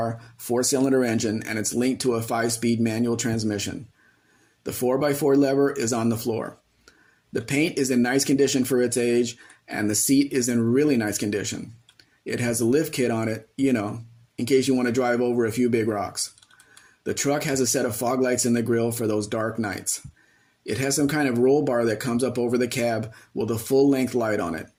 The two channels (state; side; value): identical; both; correlation 1.00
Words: 4-cylinder engine and it's linked to a 5-speed manual transmission. The 4x4 lever is on the floor. The paint is in nice condition for its age and the seat is in really nice condition. It has a lift kit on it, in case you want to drive over a few big rocks. The truck has a set of fog lights in the grille for those dark nights. It has some kind of roll bar that comes up over the cab with a full-length light on it.